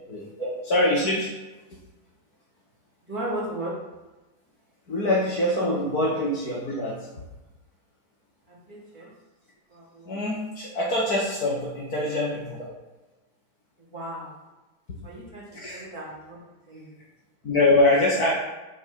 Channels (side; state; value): right; late; 4.5 ms